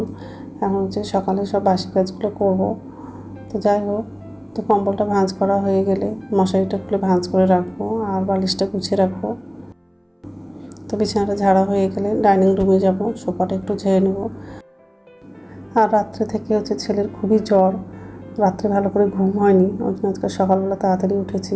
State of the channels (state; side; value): identical; both; correlation 1.00